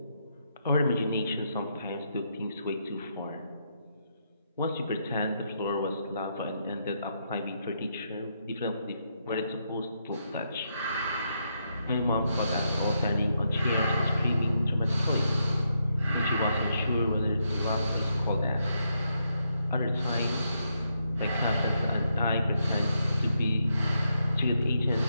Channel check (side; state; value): both; inverted; correlation -0.80